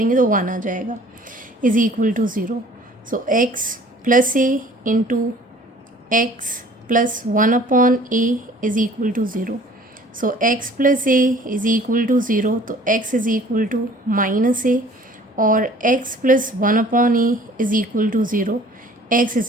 तो वन आ जाएगा, is equal to zero. So x plus a into x plus one upon a is equal to zero. So x plus a is equal to zero, तो x is equal to minus a, और x plus one upon a is equal to zero, x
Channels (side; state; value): both; normal; correlation 0.52